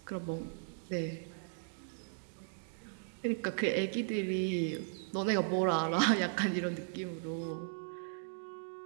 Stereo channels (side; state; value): left; silent; digital silence